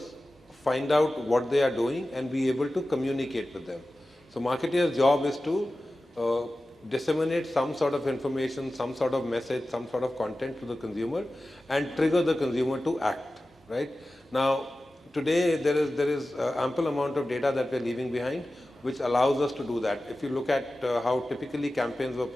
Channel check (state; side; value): normal; both; correlation 0.95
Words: find out what they are doing, and be able to communicate with them. So marketeers' job is to disseminate some sort of information, some sort of message, some sort of content to the consumer and trigger the consumer to act, right? Now, today there is ample amount of data that we're leaving behind, which allows us to do that. If you look at how typically campaigns were